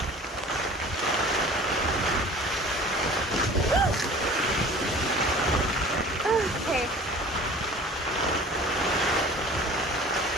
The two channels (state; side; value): normal; both; correlation 0.44